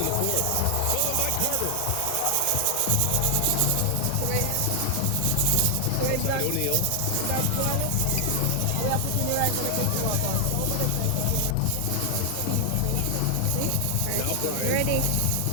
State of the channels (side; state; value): both; different; correlation 0.00